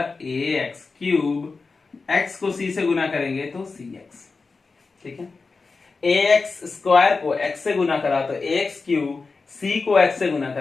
ए एक्स क्यूब, एक्स को सी से गुना करेंगे तो सी एक्स, ठीक है। ए एक्स स्क्वायर को एक्स से गुना करा तो ए एक्स क्यूब, सी को एक्स से गुना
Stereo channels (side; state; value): right; quieter; 4.2 dB